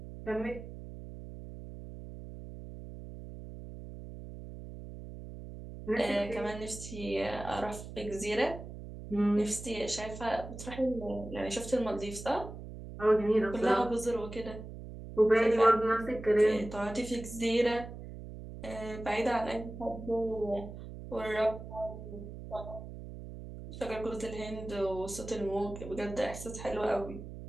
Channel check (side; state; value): right; noise; hum, 11 dB below the sound